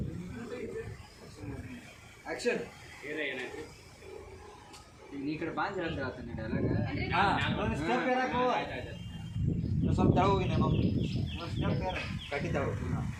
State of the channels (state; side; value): identical; both; correlation 1.00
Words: ಈ ಕಡೆ ಬಾಂಧ ಹೇಳ್ತಾನೆ ಡೈಲಾಗ್ ಸ್ವಲ್ಪ ತಳ ಹೋಗಿ ನಾನು ಕಟ್ಟಿ ತಳ